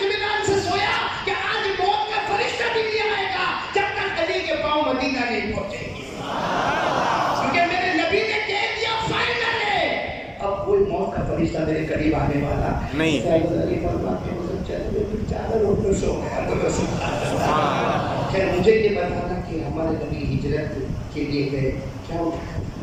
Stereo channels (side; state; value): both; identical; correlation 1.00